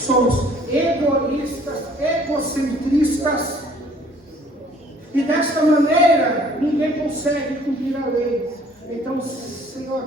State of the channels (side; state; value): both; normal; correlation 0.57